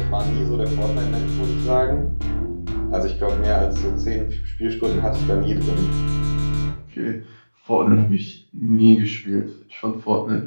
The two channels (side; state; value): both; inverted; correlation -1.00